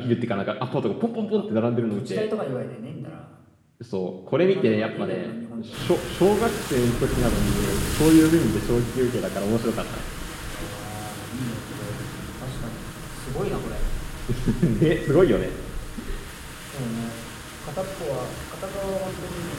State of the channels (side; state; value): both; identical; correlation 1.00